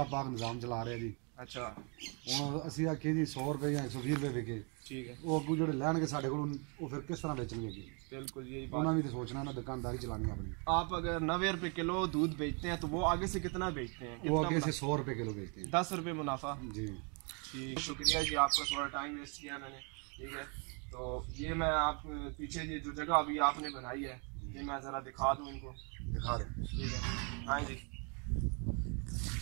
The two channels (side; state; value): left; quieter; 35.4 dB